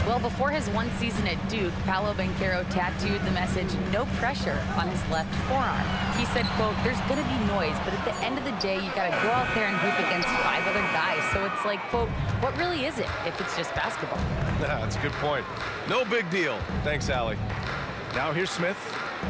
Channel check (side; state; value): both; identical; correlation 1.00